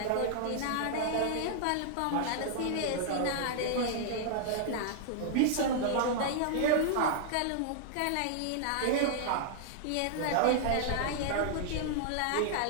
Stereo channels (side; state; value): both; different; correlation -0.01